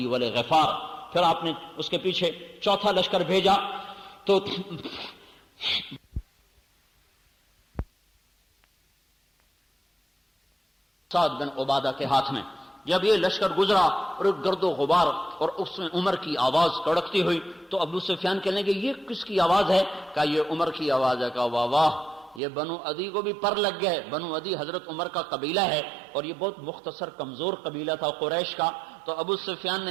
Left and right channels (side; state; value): left; drops out; at 22.4 s